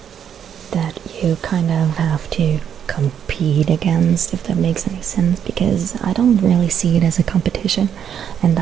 that you kind of have to compete against, if that makes any sense, because I don't really see it as a competition in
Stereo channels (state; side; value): quieter; left; 8.6 dB